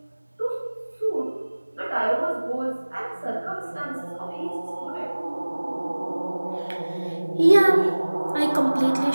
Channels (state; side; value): inverted; both; correlation -1.00